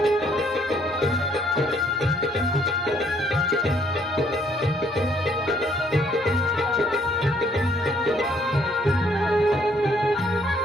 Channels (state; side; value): normal; both; correlation 0.66